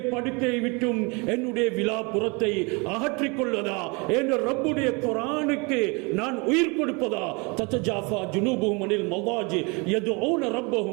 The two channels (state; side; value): quieter; left; 29.4 dB